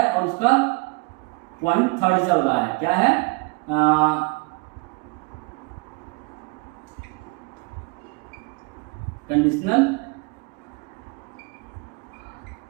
और उसका पॉइंट थर्ड चल रहा है। क्या है? Conditional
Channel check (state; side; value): quieter; left; 28.8 dB